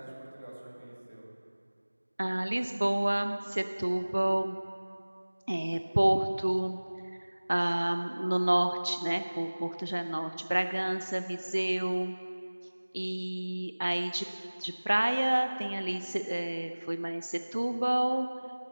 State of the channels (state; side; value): inverted; both; correlation -1.00